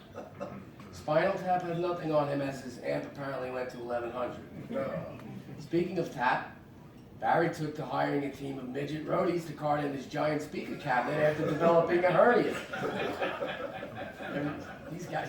Spinal Tap has nothing on him as his amp apparently went to 1100. Speaking of tap, Barry took to hiring a team of midget roadies to cart in his giant speaker cabinet after developing a hernia. These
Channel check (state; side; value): identical; both; correlation 1.00